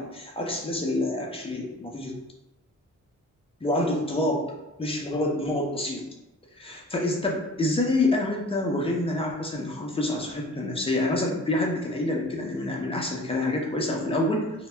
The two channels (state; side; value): normal; both; correlation 0.45